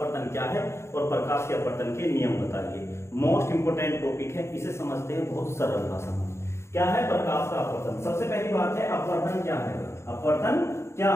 क्या है और प्रकाश के अपवर्तन के नियम बताइए। मोस्ट इंपोर्टेंट टॉपिक है, इसे समझते हैं बहुत सरल भाषा में। क्या है प्रकाश का अपवर्तन? सबसे पहली बात है, अपवर्तन क्या है। अपवर्तन क्या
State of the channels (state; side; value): late; right; 0.13 ms